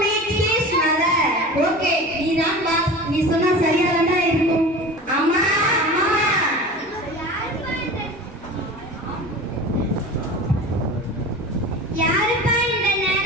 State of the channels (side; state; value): both; normal; correlation 0.35